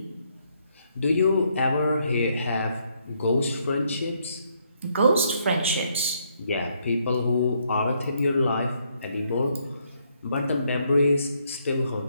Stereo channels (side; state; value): both; inverted; correlation -0.72